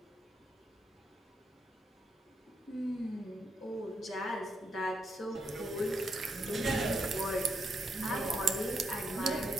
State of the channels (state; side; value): normal; both; correlation 0.80